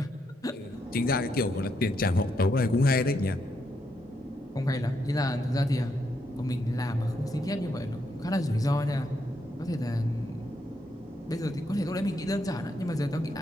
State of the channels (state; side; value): normal; both; correlation 0.79